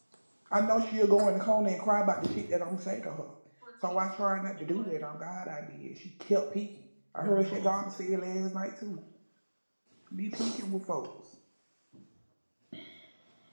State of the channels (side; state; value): both; inverted; correlation -1.00